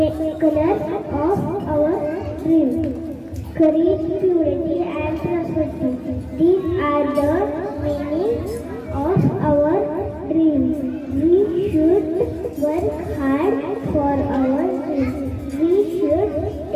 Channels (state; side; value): identical; both; correlation 1.00